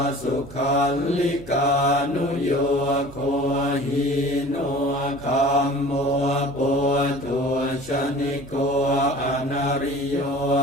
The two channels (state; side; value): noise; right; hum, 19 dB below the sound